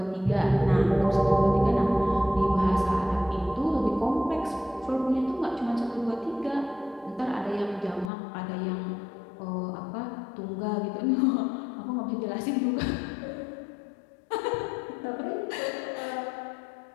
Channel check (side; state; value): right; drops out; at 8.1 s